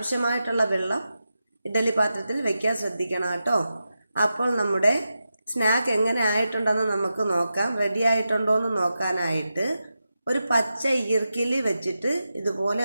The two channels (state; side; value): inverted; both; correlation -0.90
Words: വെള്ളം ഇഡലി പാത്രത്തിൽ വെക്കാൻ ശ്രദ്ധിക്കണം കേട്ടോ. അപ്പോൾ നമ്മുടെ സ്നാക്ക് എങ്ങനെ ആയിട്ടുണ്ടെന്ന് നമുക്ക് നോക്കാം. റെഡി ആയിട്ടുണ്ടോ എന്ന് നോക്കാനായിട്ട് ഒരു പച്ച ഈർക്കിൽ വെച്ചിട്ട് ഇതുപോലെ